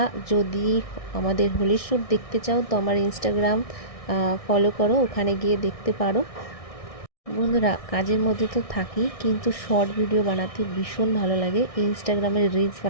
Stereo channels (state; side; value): late; right; 1.6 ms